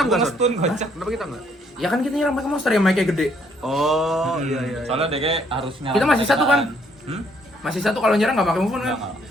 enggak? Gua Son? stun kocak. Kenapa kita enggak? Ya kan kita nyerang pakai monster yang mic-nya gede. Oh, iya. Soalnya DK harus nyerang. Kita masih 1 kan? Hmm? Masih 1 kalau nyerang nggak pakai move on kan? Nggak.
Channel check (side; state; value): both; normal; correlation 0.68